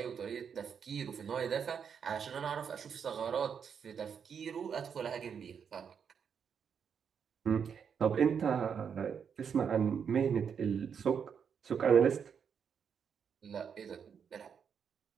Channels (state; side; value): quieter; left; 7.1 dB